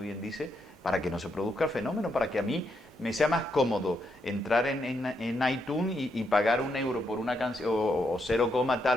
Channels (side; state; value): both; normal; correlation 0.79